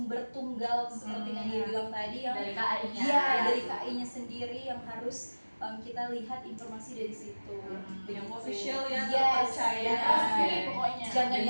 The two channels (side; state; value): both; inverted; correlation -1.00